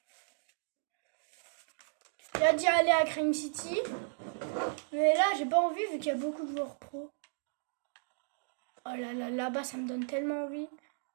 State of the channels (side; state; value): left; silent; digital silence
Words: J'ai hâte d'y aller à Crime City. Mais là, j'ai pas envie vu qu'il y a beaucoup de joueurs pro. Oh là là, là-bas, ça me donne tellement envie.